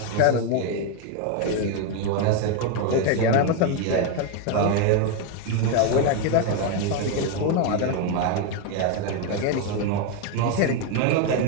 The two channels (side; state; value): both; different; correlation 0.02